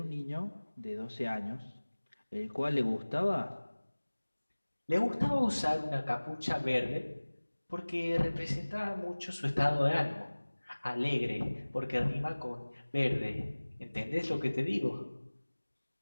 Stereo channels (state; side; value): inverted; both; correlation -1.00